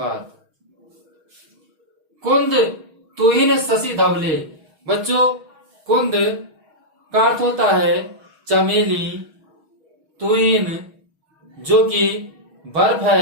कुंद तुहिन शशि धवले। बच्चों, कुंद का अर्थ होता है चमेली, तुहिन जो कि बर्फ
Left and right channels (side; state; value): left; late; 6.3 ms